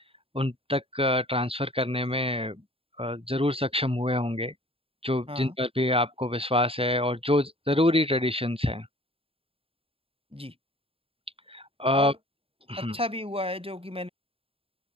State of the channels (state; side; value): late; left; 0.27 ms